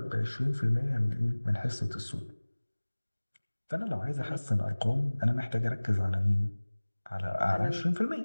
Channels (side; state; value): both; inverted; correlation -1.00